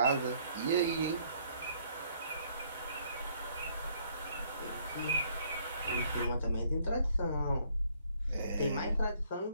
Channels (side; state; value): both; inverted; correlation -0.64